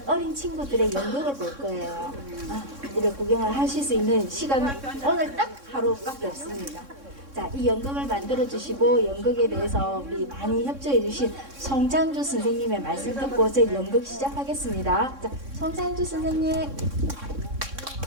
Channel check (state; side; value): late; left; 3.6 ms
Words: 어린 친구들의 연극을 볼 거예요. 이렇게 구경을 하실 수 있는 시간은 오늘 딱 하루밖에 없습니다. 자, 이 연극을 만들어 주시고 연극에 대해서 우리 많이 협조해 주신 송장주 선생님의 말씀 듣고 저희 연극 시작하겠습니다. 자, 송장주 선생님.